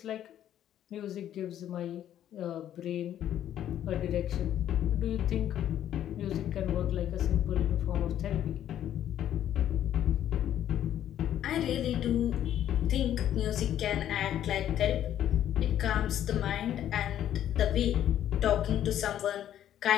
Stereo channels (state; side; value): quieter; right; 11.1 dB